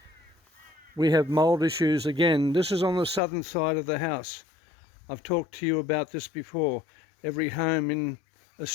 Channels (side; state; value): right; drops out; at 3.2 s